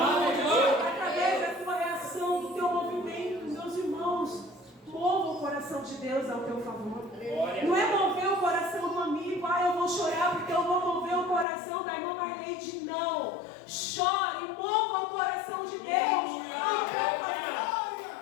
da tua reação, do teu movimento, meus irmãos, mova o coração de Deus ao teu favor. Não é mover o coração do amigo, eu vou chorar porque eu vou mover o coração da irmã Marleide. Não, chore e mova o coração de Deus ao teu favor.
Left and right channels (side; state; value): right; drops out; at 11.5 s